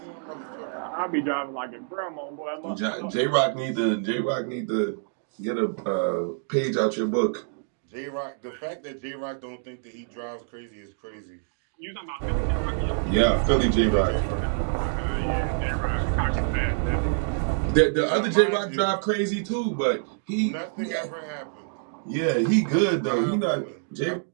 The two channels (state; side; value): silent; left; digital silence